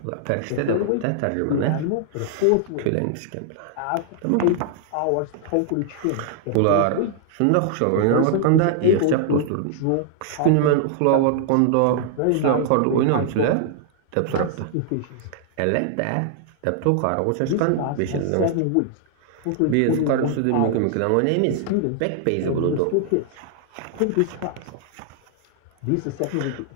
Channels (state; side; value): different; both; correlation -0.01